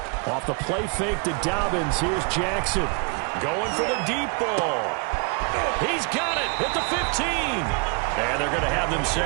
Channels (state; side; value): quieter; left; 35.1 dB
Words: Off the play fake to Dobbins, here's Jackson. Going for the deep ball. He's got it at the 15. And they're going to have